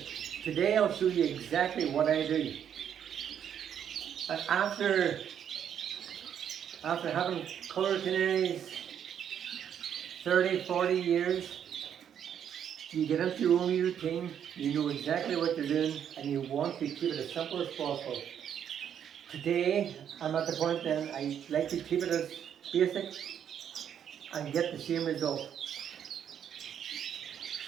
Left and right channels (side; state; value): left; quieter; 8.9 dB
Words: Today I'll show you exactly what I do. And after having colour canaries 30, 40 years, you get into your own routine, you know exactly what you're doing, and you want to keep it as simple as possible. Today, I'm at the point then, I like to keep it as basic and get the same result.